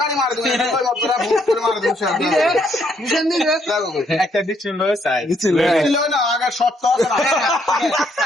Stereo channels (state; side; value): normal; both; correlation 0.71